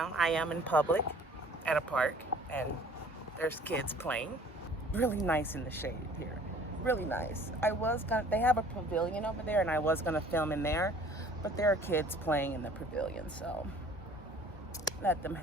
I am in public at a park and there's kids playing. Really nice in the shade here. Really nice. They have a pavilion over there and I was gonna film in there, but there are kids playing in the pavilion, so let them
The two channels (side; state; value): both; normal; correlation 0.52